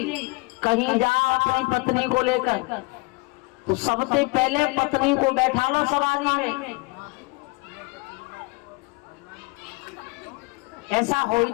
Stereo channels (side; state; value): right; quieter; 26.9 dB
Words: कहीं जा अपनी पत्नी को लेकर तो सबसे पहले पत्नी को बैठा लो सवारी में। ऐसा हो ही